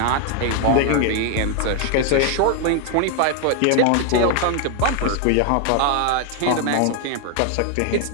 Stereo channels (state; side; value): different; both; correlation 0.00